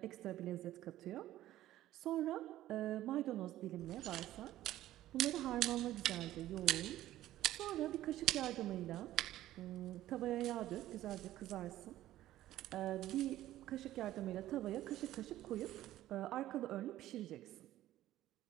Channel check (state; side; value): quieter; left; 14.2 dB